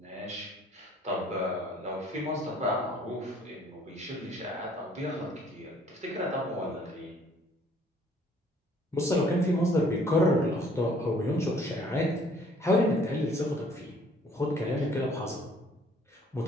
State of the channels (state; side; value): normal; both; correlation 0.59